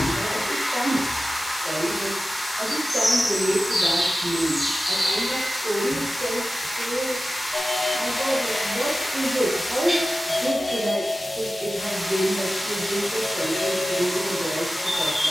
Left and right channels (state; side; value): normal; both; correlation 0.95